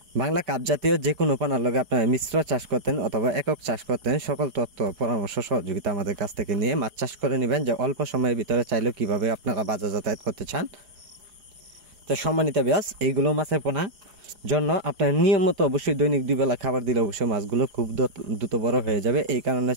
বাংলা কাপ জাতীয় যে কোনো পোনার লগে আপনারা মিশ্র চাষ করতেন অথবা একক চাষ করতেন, সকল তথ্য পরামর্শ সহযোগিতা আমাদের কাছ থেকে নিয়ে মাছ চাষ করে নেবেন, যে অল্প সময়ের ভিতরে চাইলেও কীভাবে আপনারা বাজার যাতায়াত করতে চান। তো সম্মানিত ব্যাস, এইগুলো মাছের পোনা জন্য আপনার নিয়মিত অবশ্যই দৈনিক 2 বেলা খাবার দিলে অবশ্যই মাছগুলো খুব দ্রুত বড় হয়ে যাবে। এই কারণে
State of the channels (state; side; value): late; left; 4.8 ms